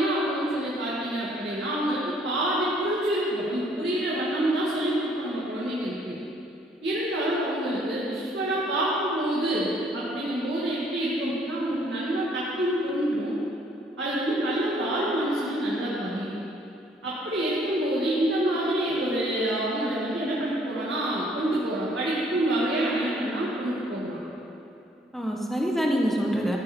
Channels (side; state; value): both; normal; correlation 0.63